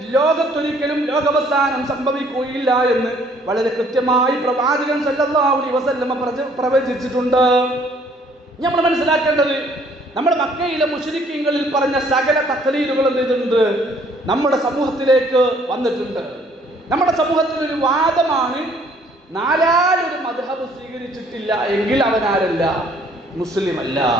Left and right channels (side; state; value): both; normal; correlation 0.61